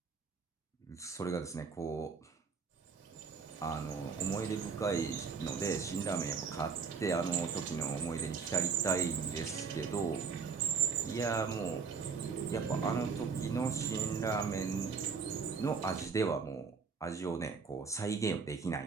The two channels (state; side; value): quieter; left; 5.5 dB